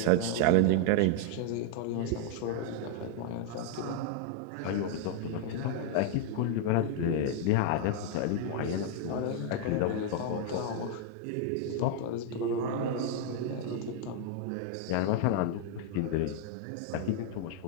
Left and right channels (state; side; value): different; both; correlation 0.00